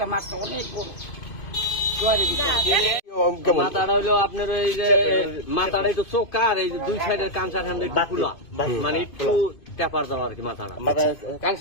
মাছ, অনেক বড় মাথাটা হইলো আপনার এই যে মাথাটা একটু চোখা আর এই যে দুই সাইডের কাঁচা ঠান্ডা একটু খোলা, মানে একটু টেপার দেওয়া আর কি মাথাটা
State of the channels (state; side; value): late; right; 2.5 ms